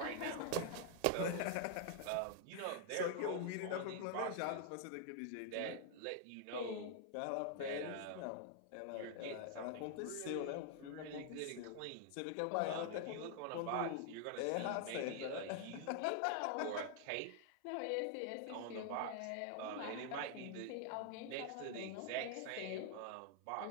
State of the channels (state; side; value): different; both; correlation 0.00